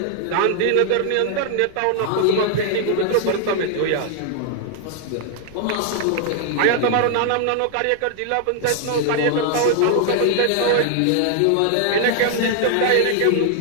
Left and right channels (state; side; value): different; both; correlation 0.00